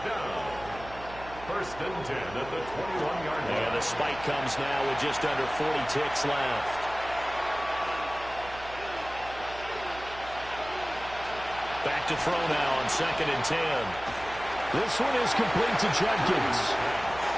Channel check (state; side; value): noise; right; hum, 16 dB below the sound